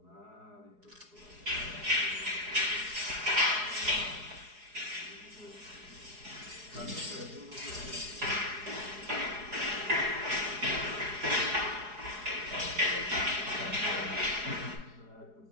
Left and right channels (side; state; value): left; late; 4.8 ms